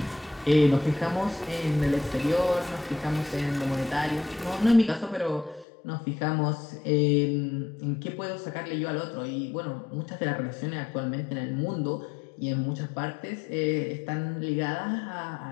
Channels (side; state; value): right; drops out; at 5.7 s